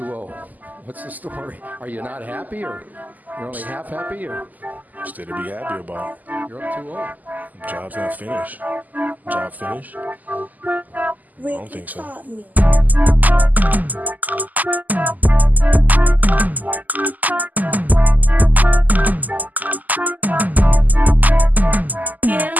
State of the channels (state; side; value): late; left; 0.081 ms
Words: What's the story? Are you not happy, or you're only half happy, or? Still to be happy about. You're up 2-0. Job's not finished. Job finished? I don't think so.